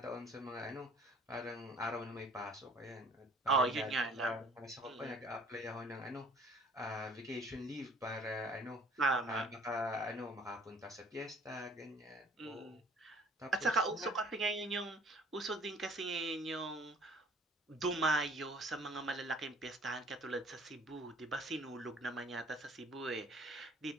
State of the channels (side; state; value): both; normal; correlation 0.54